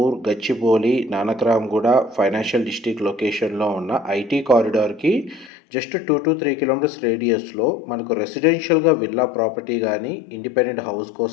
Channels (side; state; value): right; drops out; at 5.5 s